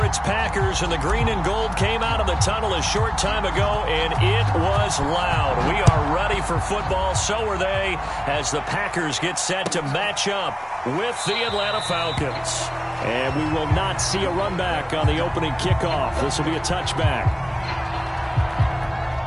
its Packers, and the green and gold came out of the tunnel a short time ago, and it was loud. We are ready for football. So are they, as the Packers get set to match up with the Atlanta Falcons. And we will not see a run back on the opening kickoff. This will be a touchback.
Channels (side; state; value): both; identical; correlation 1.00